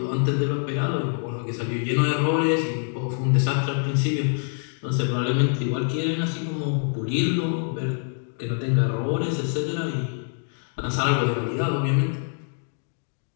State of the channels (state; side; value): silent; right; 62 dB below the other